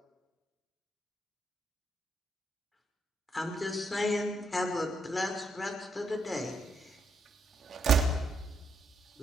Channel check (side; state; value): both; normal; correlation 0.77